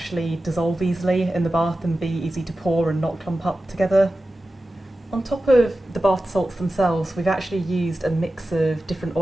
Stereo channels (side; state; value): both; normal; correlation 0.94